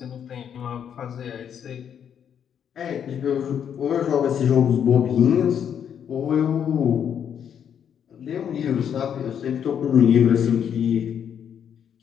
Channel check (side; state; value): right; quieter; 8.5 dB